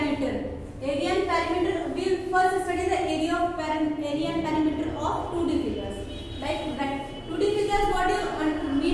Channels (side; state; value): both; identical; correlation 1.00